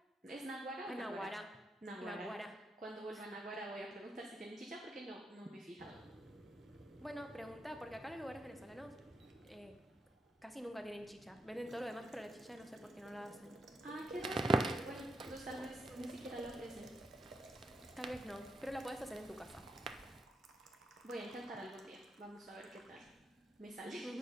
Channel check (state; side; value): normal; both; correlation 0.82